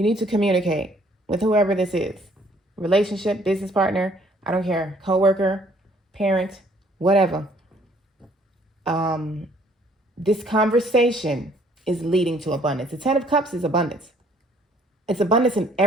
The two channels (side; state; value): both; normal; correlation 0.61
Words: need to communicate with whoever this is. Relationship, business partner, I don't care, coworker, parent, whatever. This conversation is leading to abundance. The 10 of Cups is abundance. It's abundance in